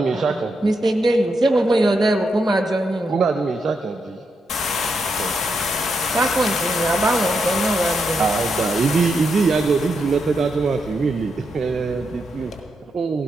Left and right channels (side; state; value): both; normal; correlation 0.83